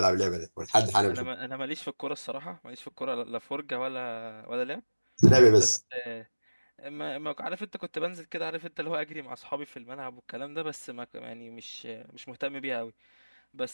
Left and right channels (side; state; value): both; inverted; correlation -1.00